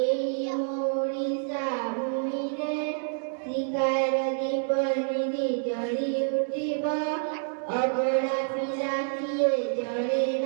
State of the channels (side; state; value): left; silent; digital silence